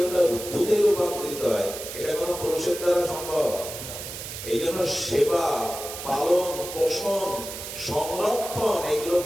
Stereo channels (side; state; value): right; noise; hiss, 9 dB below the sound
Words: ওটা দুধে রূপান্তরিত হয়। এটা কোনো পুরুষের দ্বারা সম্ভব। এই জন্য সেবা, পালন, পোষণ, সংরক্ষণ এগুলো